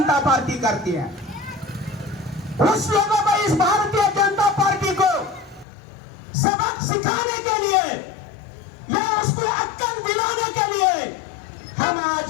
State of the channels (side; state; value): right; drops out; at 5.7 s